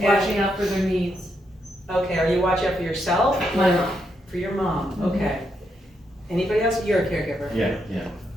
out for their needs. Okay, are you watching out for yourself? My mom. For your mom, okay. Anybody else? You're a caregiver? Yeah.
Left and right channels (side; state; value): both; normal; correlation 0.80